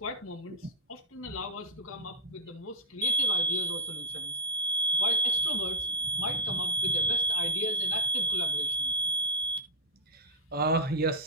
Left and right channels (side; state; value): both; normal; correlation -0.02